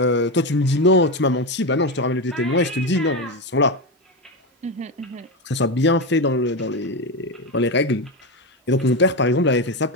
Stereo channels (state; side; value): normal; both; correlation 0.14